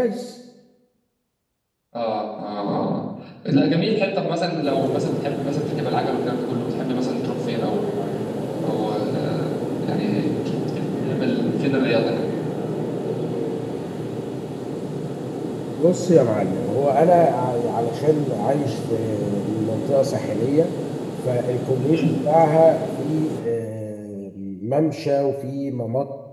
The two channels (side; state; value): both; identical; correlation 1.00